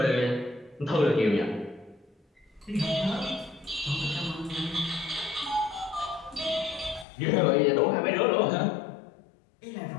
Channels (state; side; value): drops out; right; at 7.1 s